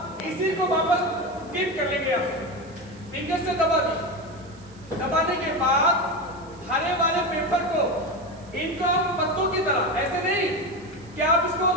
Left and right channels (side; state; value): right; noise; hiss, 27 dB below the sound